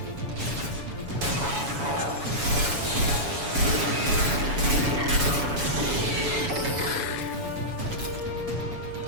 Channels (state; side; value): late; left; 7.1 ms